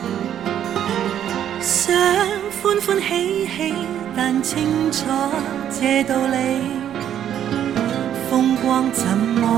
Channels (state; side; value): quieter; left; 10.1 dB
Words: 想歡歡喜喜，但清楚這道理，風光怎